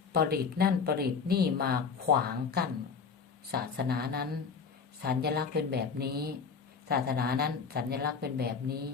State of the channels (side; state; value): right; quieter; 5.7 dB